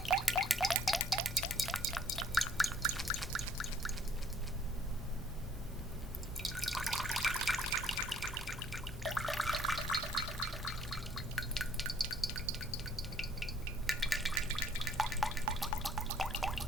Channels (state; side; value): normal; both; correlation 0.59